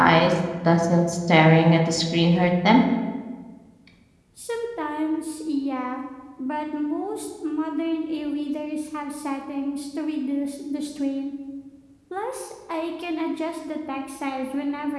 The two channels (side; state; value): both; identical; correlation 1.00